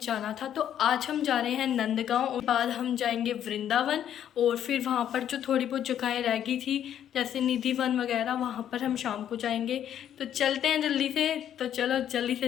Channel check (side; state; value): right; quieter; 10.2 dB